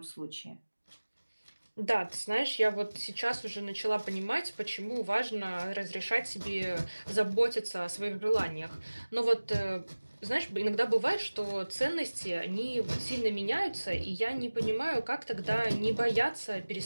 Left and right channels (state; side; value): inverted; both; correlation -1.00